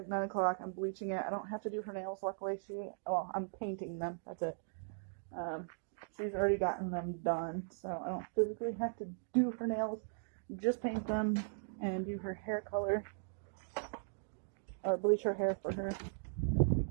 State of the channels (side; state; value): left; silent; digital silence